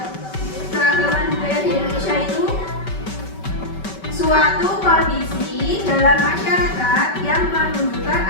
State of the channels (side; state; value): right; late; 5.2 ms